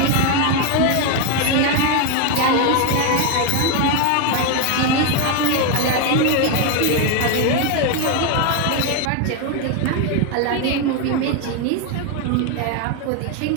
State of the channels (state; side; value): different; both; correlation 0.01